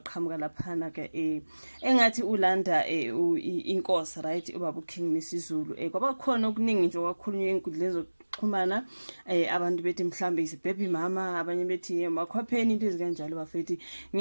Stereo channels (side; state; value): both; inverted; correlation -1.00